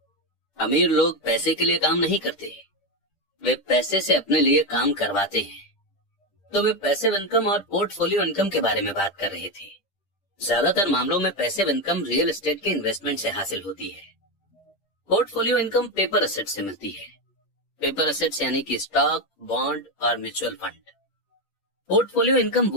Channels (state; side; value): late; right; 10 ms